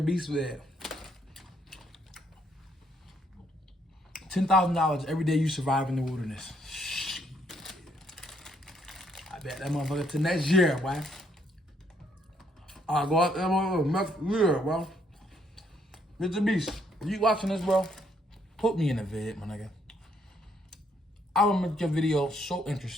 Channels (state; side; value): normal; both; correlation 0.70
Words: Beast vid. $10,000 every day you survive in the wilderness. Shit. I bet that motherfucker to next year, boy. I'll go out there next year, bro. Mr. Beast, if you watching this, bro, put me in a vid, my nigga. I will make your video so